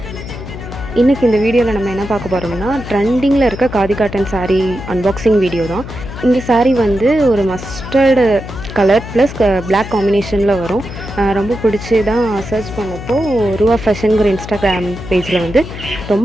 இன்றைக்கி இந்த வீடியோவில் நம்ம என்ன பார்க்க போகிறோம்னா ட்ரெண்டிங்கில் இருக்க khadi cotton sari unboxing video தான். இந்த சாரீ வந்து ஒரு மஸ்டர்டு கலர் ப்ளஸ் பிளாக் காம்பினேஷனில் வரும். ரொம்ப பிடிச்சி தான் சர்ச் பண்ணப்போ ரூவா ஃபேஷனுங்கிற இன்ஸ்டாகிராம் பேஜில் வந்து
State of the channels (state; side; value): noise; left; hum, 11 dB below the sound